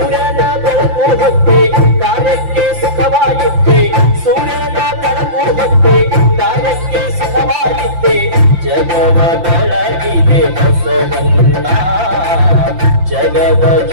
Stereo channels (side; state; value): left; late; 5.8 ms